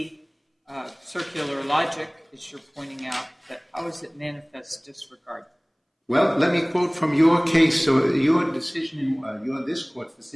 circular logic, as you're pointing out, but how is it manifest disregard? Well, let me quote from your case, so your decision, this court's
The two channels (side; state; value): both; identical; correlation 1.00